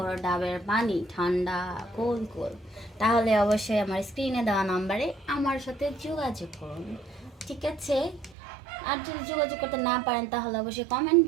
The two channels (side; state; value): left; drops out; at 8.3 s